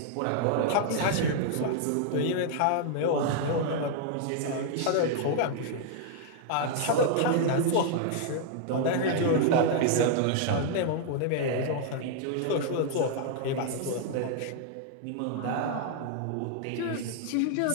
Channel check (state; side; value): different; both; correlation -0.01